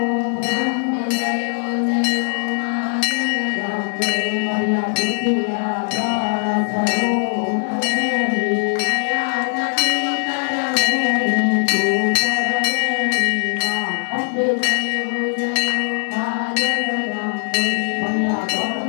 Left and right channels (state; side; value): silent; right; digital silence